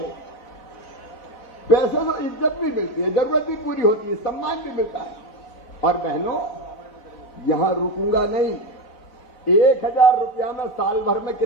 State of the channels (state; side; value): late; right; 4.3 ms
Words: पैसे तो इज्जत भी मिलती है, जरूरत भी पूरी होती है, सम्मान भी मिलता है। और बहनों, यहां रुकूंगा नहीं। 1000 रुपया में साल भर में